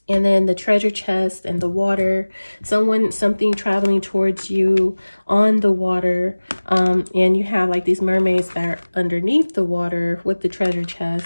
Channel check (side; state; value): both; inverted; correlation -1.00